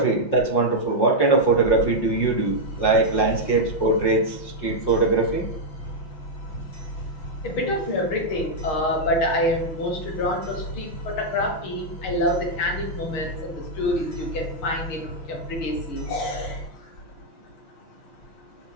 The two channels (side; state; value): right; late; 5.6 ms